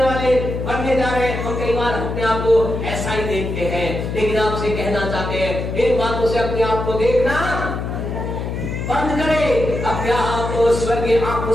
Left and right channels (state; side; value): noise; left; hum, 4 dB below the sound